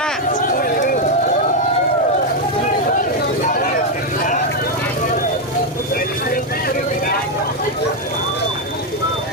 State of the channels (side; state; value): both; normal; correlation 0.04